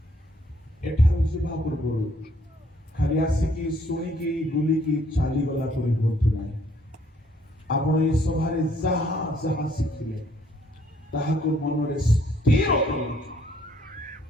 ଏଠାରୁ ଯିବା ପୂର୍ବରୁ ଖାଲି ଆସିକି ଶୁଣିକି ବୁଲିକି ଚାଲିଗଲା ପରି ହୁଅନ୍ତୁ ନାହିଁ। ଆପଣ ଏ ସଭାରେ ଯାହା ଯାହା ଶିଖିଲେ ତାହାକୁ ମନରେ ସ୍ଥିର କରନ୍ତୁ,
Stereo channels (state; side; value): normal; both; correlation 0.65